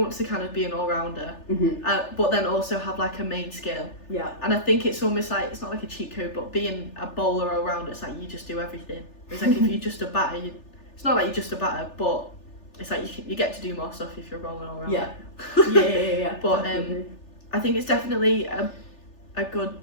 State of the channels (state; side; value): late; right; 3.4 ms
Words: of be an all-rounder, but then also have like a main skill. Yeah. And I think it's almost like, it's not like a cheat code, but being a bowler all-rounder, it's like you just do everything. It's like if you're just a batter, it's not like you're just a batter, but it's like you get to do more stuff if you're a bowling all-rounder. Yeah. But definitely. I think it's definitely a good